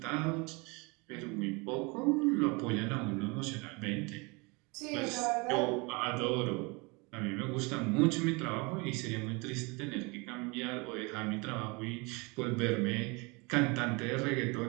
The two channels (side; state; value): left; quieter; 28.1 dB